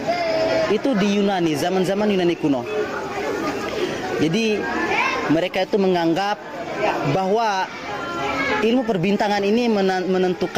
itu di Yunani, zaman-zaman Yunani kuno. Jadi mereka itu menganggap bahwa ilmu perbintangan ini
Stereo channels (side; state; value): both; identical; correlation 1.00